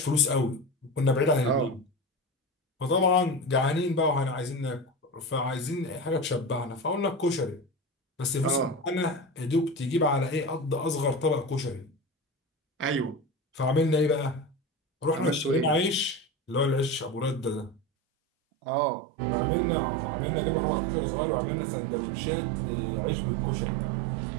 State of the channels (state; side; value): drops out; left; at 17.8 s